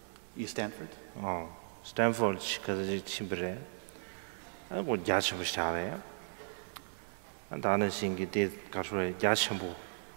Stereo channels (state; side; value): silent; left; digital silence